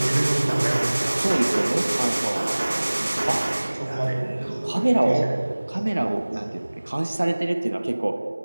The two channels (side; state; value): both; inverted; correlation -1.00